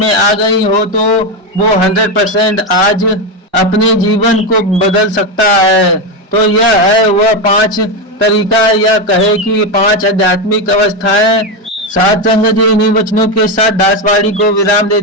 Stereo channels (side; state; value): both; normal; correlation 0.11